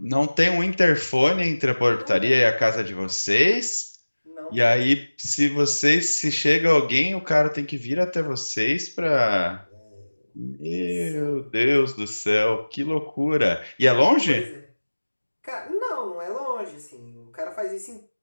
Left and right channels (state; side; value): inverted; both; correlation -1.00